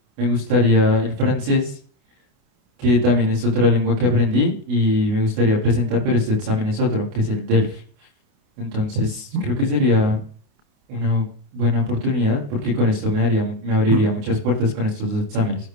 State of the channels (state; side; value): late; left; 28 ms